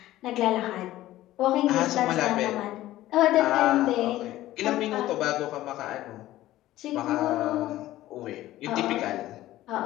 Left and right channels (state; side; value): quieter; right; 15.2 dB